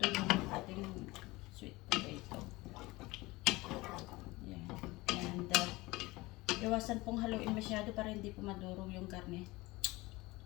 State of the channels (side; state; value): right; quieter; 21.3 dB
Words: yung ating sweet potato. Yan. And iwasan pong haluin masyado para hindi po madurog yung karne.